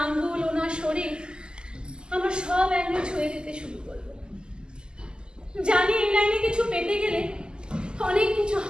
আঙ্গুল, ওনার শরীর আমার সব অ্যাঙ্গেল ছুঁয়ে দিতে শুরু করলো। জানি এই লাইনে কিছু পেতে গেলে অনেক কিছু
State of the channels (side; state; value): left; late; 0.047 ms